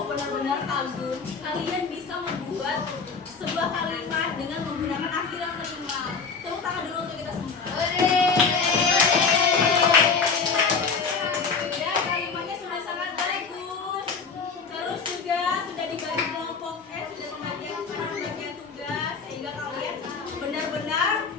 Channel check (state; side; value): quieter; right; 5.2 dB